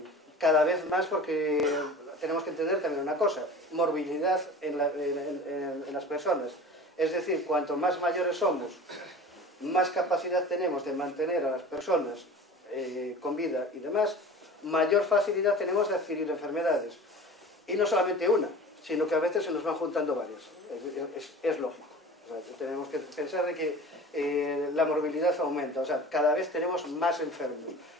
cada vez más, porque tenemos que entender también una cosa, morbilidad en las personas. Es decir, cuanto más mayores somos, más capacidad tenemos de mantener a las personas con vida y demás, mayor facilidad tenemos de adquirir enfermedades. Y no solamente una, sino que a veces se nos van juntando varias. Es lógico. O sea, tenemos que pensar de que la morbilidad aumenta. O sea, cada vez tenemos más enfermos.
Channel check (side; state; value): both; normal; correlation 0.39